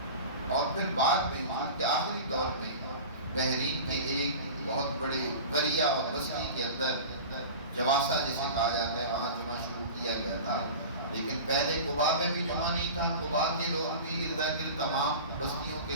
اور پھر بعد میں حضور کے آخری دور میں بحرین کے ایک بہت بڑے قریہ اور بستی کے اندر جواسا جسے کہا جاتا ہے وہاں جمعہ شروع کیا گیا تھا، لیکن پہلے قباء میں بھی جمعہ نہیں تھا۔ قباء کے لوگ بھی، ارد گرد تمام بستیوں کے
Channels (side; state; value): both; inverted; correlation -0.34